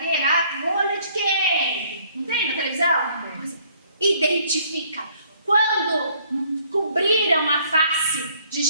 olho de quem? Não tem na televisão? Pois é. Identifica. Quando cobriram a face de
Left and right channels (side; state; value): both; inverted; correlation -0.62